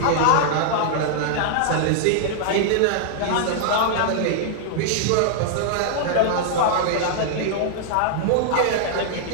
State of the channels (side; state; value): both; different; correlation -0.01